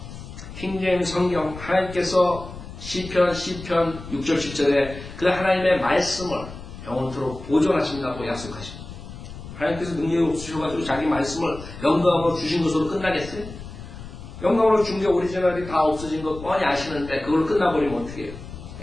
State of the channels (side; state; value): left; noise; rumble, 13 dB below the sound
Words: 킹제임 성경 하나님께서 시편 6절 10절에 그 하나님의 말씀을 영원토록 보존하신다고 약속하십니다. 하나님께서 능력이 없으셔가지고 자기 말씀을 영광으로 주신 것으로 끝나겠어요? 영광으로 준 게 오리지널이 다 없어진 거 뻔히 아시는데 그걸 끝나버리면 어떻게 해요?